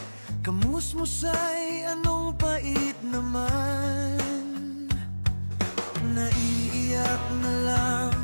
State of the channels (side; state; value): both; inverted; correlation -1.00